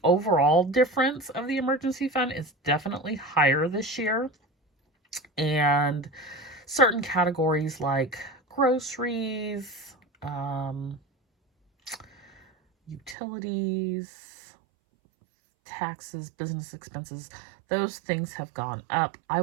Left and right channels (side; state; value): left; drops out; at 13.2 s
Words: overall difference of the emergency fund is definitely higher this year, and certain categories like groceries, utilities, taxes, business expenses, those things have gone up. I